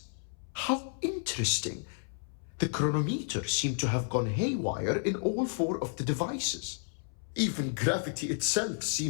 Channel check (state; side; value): silent; right; 57 dB below the other